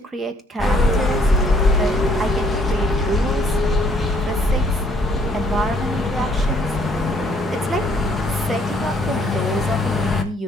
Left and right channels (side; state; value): both; normal; correlation 0.64